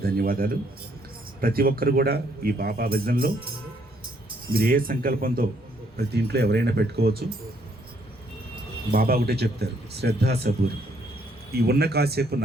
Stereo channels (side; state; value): both; normal; correlation 0.69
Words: ధన్యవాదాలు. ప్రతి ఒక్కరు కూడా ఈ బాబా భజనలో మీరు ఏ సంకల్పంతో ప్రతి ఇంట్లో ఎవరైనా పెట్టుకోవచ్చు. బాబా ఒకటే చెప్తారు, శ్రద్ధ సబూర్, ఈ ఉన్న కాసేపు